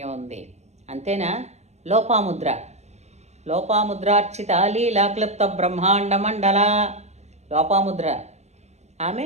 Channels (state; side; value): late; left; 0.32 ms